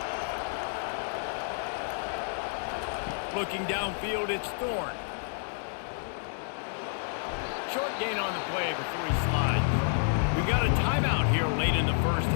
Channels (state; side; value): silent; right; digital silence